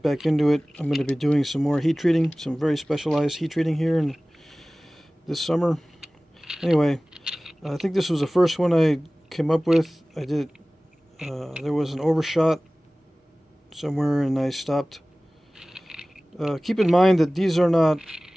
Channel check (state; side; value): normal; both; correlation 0.98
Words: back into it. I'm going to be doing some more heat treating, some very specialized heat treating here in this summer. Anyway, I think this was the first one I came up with. I did. There was an overshot somewhere, and I stopped. Keep in mind that these are not